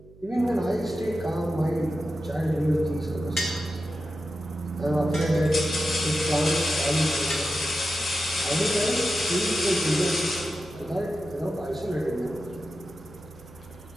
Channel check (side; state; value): right; noise; hum, 23 dB below the sound